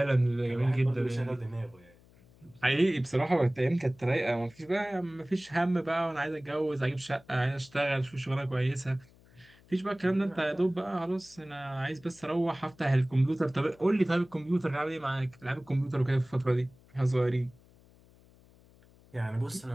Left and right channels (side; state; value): left; noise; hum, 27 dB below the sound